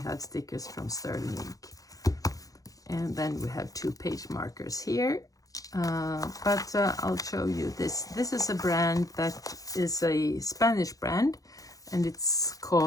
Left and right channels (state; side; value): late; right; 0.17 ms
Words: stickers from Sterling Ink. And then we have 2 page markers here. But I'll show you this. This is a brand that is a Spanish brand, and it's